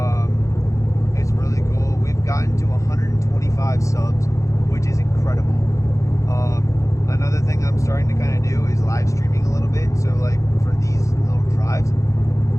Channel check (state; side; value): late; right; 0.15 ms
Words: It's really cool. We've gotten to 125 subs, which is incredible. Another thing I'm starting to kind of do is live streaming a little bit. So for these little drives,